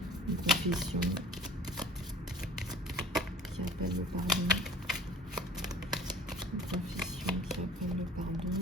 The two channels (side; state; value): both; normal; correlation 0.47